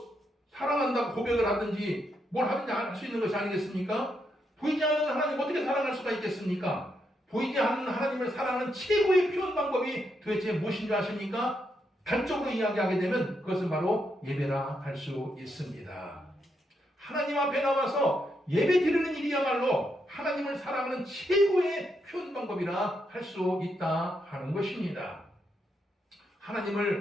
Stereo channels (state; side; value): normal; both; correlation 0.80